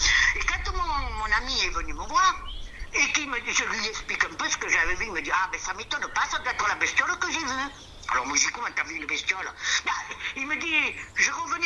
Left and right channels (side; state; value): both; identical; correlation 1.00